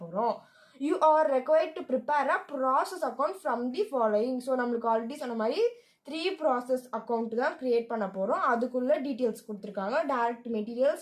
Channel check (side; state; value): both; identical; correlation 1.00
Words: போகிறோம். You are required to prepare a process account from the following. So நம்மளுக்கு ஆல்ரெடி சொன்ன மாதிரி 3 ப்ராசஸ் அக்கௌண்ட் தான் கிரியேட் பண்ண போகிறோம். அதுக்குள்ள டீட்டெயில்ஸ் கொடுத்துருக்காங்க. Direct